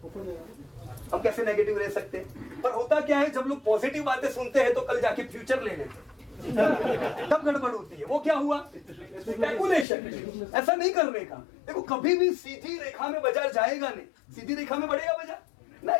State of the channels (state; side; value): drops out; right; at 9.9 s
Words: हम कैसे नेगेटिव रह सकते हैं? पर होता क्या है, जब लोग पॉजिटिव बातें सुनते हैं तो कल जाके फ्यूचर ले लेते हैं, तब गड़बड़ होती है। वो क्या हुआ? स्पेकुलेशन। ऐसा नहीं करने का। देखो, कभी भी सीधी रेखा में बाजार जाएगा नहीं। सीधी रेखा में बढ़ेगा बाजार?